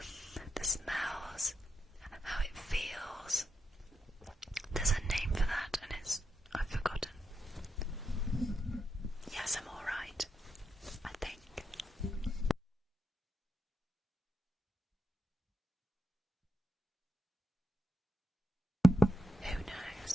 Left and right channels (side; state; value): both; normal; correlation 0.84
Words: the smells, how it feels. There's a name for that, and I've forgotten. Yes, I'm alright, I think. Who